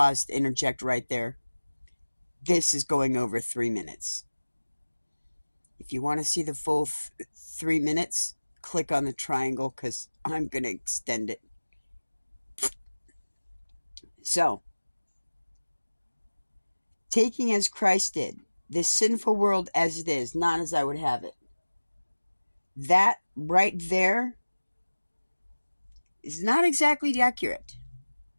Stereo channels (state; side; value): inverted; both; correlation -1.00